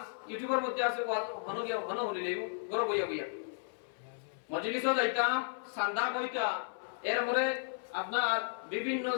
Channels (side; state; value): right; silent; 55 dB below the other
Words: ইউটিউবের মধ্যে আছে ওয়াজ হন গিয়া হন হলিলে ঘর বইয়া বইয়া মজলিসও যাইতাম সান্দা কইতা এরপরে আপনার বিভিন্ন